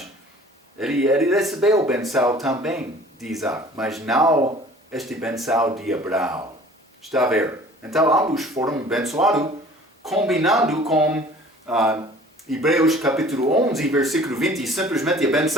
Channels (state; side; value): normal; both; correlation 0.49